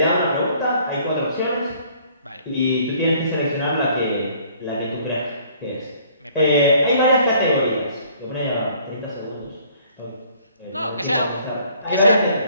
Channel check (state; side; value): inverted; both; correlation -0.58